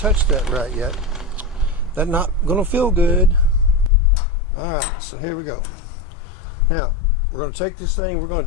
that right yet. That's not going to feel good. Alright, so here we go. Now, we're going to take this thing, we're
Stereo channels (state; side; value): drops out; right; at 3.9 s